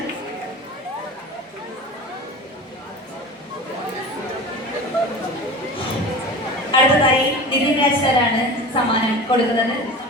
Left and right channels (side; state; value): both; normal; correlation 0.34